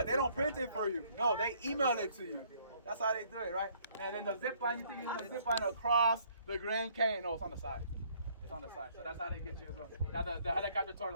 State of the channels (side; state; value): both; inverted; correlation -0.63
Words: They don't print it for you. No, they email it to you. That's how they do it, right? And then the zip line, you think you're gonna zip line across the Grand Canyon? No, it's on the side. It's on the side, so that's how they get you as well. Now the helicopter tour, a